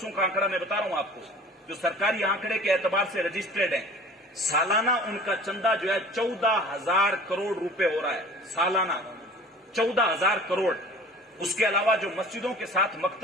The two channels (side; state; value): both; normal; correlation 0.45